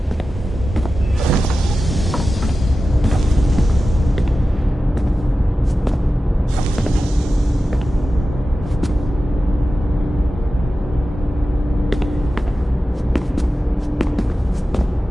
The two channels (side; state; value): both; normal; correlation 0.94